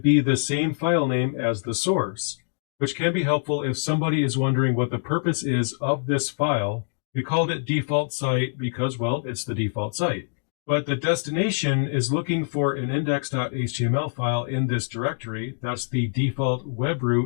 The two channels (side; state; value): right; silent; digital silence